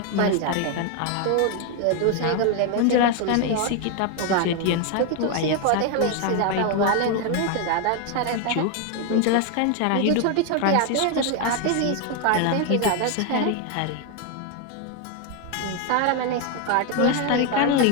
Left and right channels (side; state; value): both; different; correlation 0.01